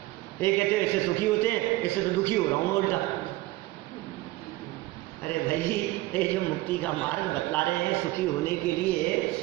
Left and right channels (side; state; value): left; quieter; 18.6 dB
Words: ये कहते हैं इससे सुखी होते हैं, इससे तो दुखी हो रहा हूँ उल्टा। अरे भाई ये जो मुक्ति का मार्ग बतला रहे हैं सुखी होने के लिए,